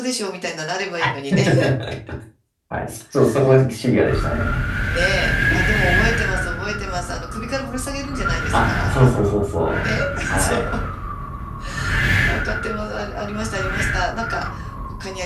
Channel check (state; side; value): identical; both; correlation 1.00